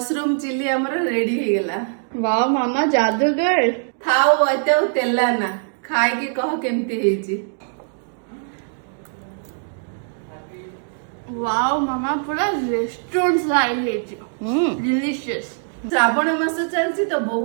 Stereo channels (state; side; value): silent; left; digital silence